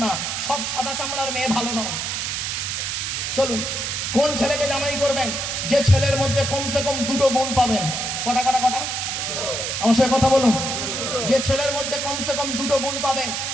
না, সব সাদা চামড়ার মেয়ে ভালো নয়। চলুন, কোন ছেলেকে জামাই করবেন? যে ছেলের মধ্যে কমসে কম 2টো গুণ পাবেন। কটা? আমার সাথে কথা বলুন। যে ছেলের মধ্যে কমসে কম 2টো গুণ পাবেন,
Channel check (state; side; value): noise; right; hiss, 2 dB below the sound